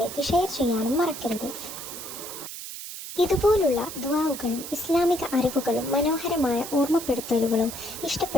ഷെയർ ചെയ്യാനും മറക്കരുത്. ഇതുപോലുള്ള ദുആകളും ഇസ്ലാമിക അറിവുകളും മനോഹരമായ ഓർമ്മപ്പെടുത്തലുകളും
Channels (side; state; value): right; noise; hiss, 10 dB below the sound